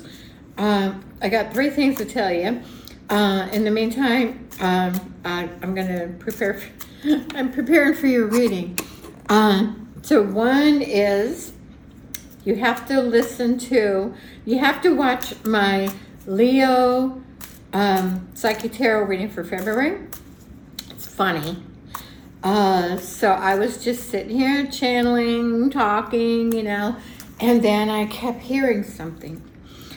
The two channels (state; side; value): identical; both; correlation 1.00